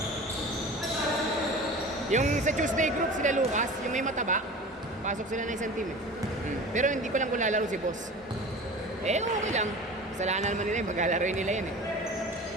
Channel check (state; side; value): normal; both; correlation 0.37